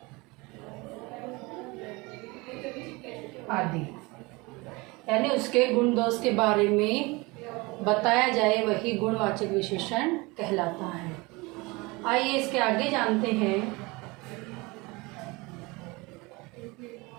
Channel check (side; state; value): left; quieter; 24.6 dB